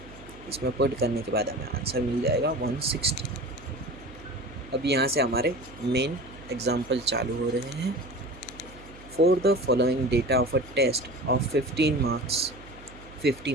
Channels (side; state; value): right; noise; hum, 19 dB below the sound